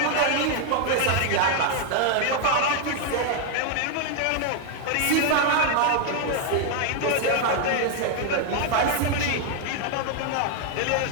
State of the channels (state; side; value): different; both; correlation 0.01